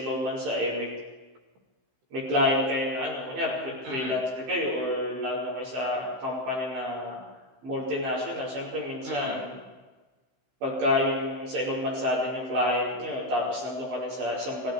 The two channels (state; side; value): late; left; 15 ms